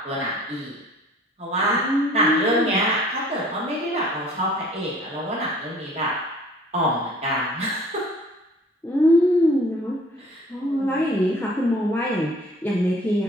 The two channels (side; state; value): both; normal; correlation 0.52